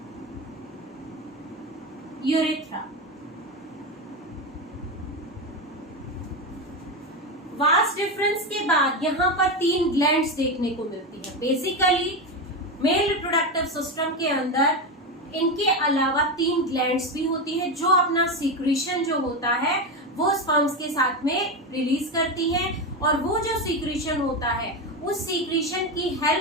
urethra. Vast difference के बाद यहाँ पर 3 ग्लैंड्स देखने को मिलती है। बेसिकली मेल रिप्रोडक्टिव सिस्टम के अंदर इनके अलावा 3 ग्लैंड्स भी होती है जो अपना सीक्रेशन जो होता है वो स्पर्म्स के साथ में रिलीज करती है, और वो जो सीक्रेशन होता है उस सीक्रेशन की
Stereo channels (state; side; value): normal; both; correlation 0.15